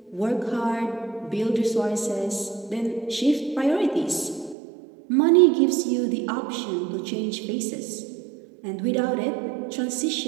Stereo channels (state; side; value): drops out; left; at 4.5 s